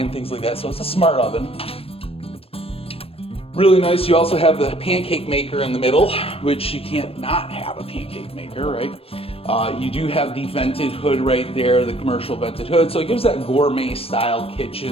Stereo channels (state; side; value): late; right; 0.28 ms